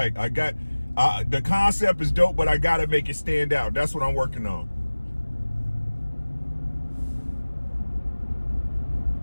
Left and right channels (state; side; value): inverted; both; correlation -1.00